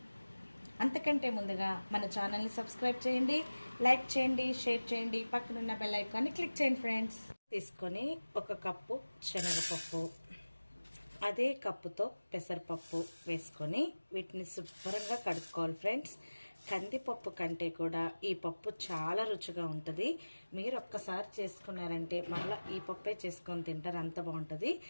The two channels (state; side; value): inverted; both; correlation -1.00